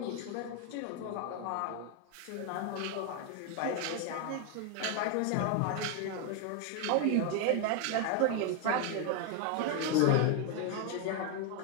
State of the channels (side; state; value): both; different; correlation 0.01